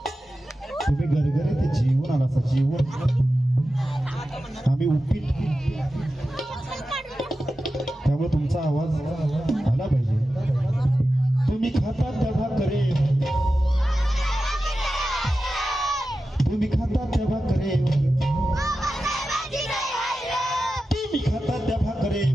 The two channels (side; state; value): both; normal; correlation 0.93